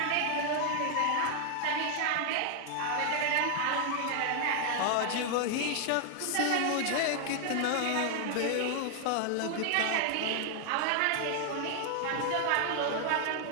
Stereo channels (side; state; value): both; different; correlation 0.00